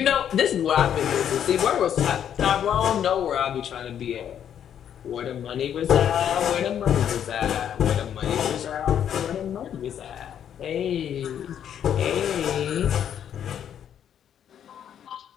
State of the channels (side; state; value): right; quieter; 9.4 dB